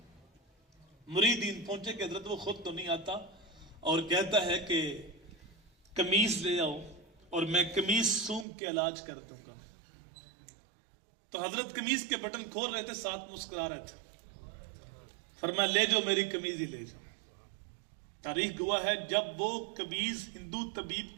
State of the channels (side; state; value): left; drops out; at 8.5 s